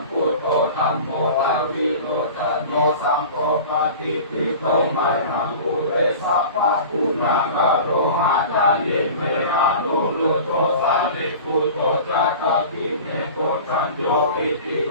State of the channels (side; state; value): both; inverted; correlation -0.38